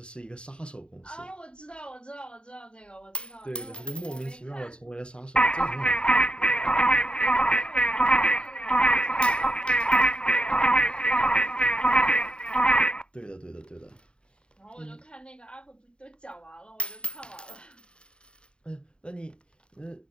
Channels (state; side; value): late; right; 0.052 ms